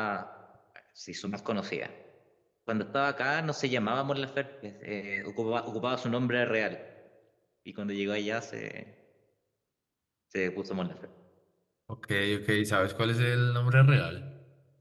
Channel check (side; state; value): both; identical; correlation 1.00